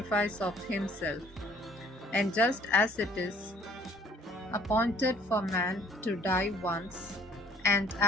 of himself. And just as it is appointed for man to die once, and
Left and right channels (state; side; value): normal; both; correlation 0.57